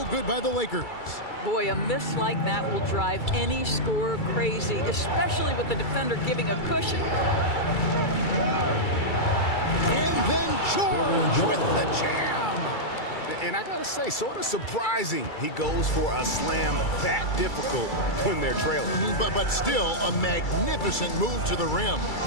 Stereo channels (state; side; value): late; right; 2.3 ms